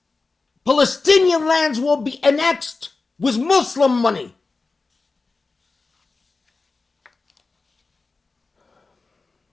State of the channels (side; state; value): right; quieter; 3.9 dB